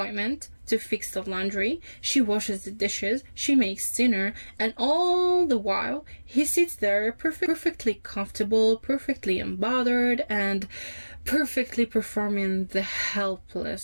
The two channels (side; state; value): both; inverted; correlation -1.00